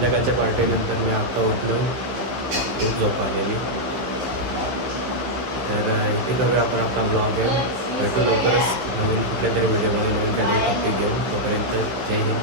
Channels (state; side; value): late; left; 15 ms